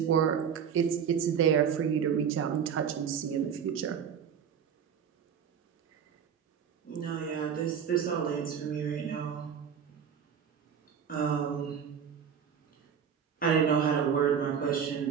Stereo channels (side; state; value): left; quieter; 7.6 dB